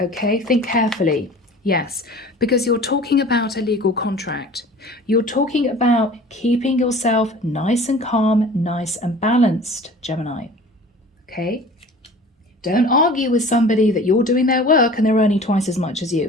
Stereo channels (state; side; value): normal; both; correlation 0.43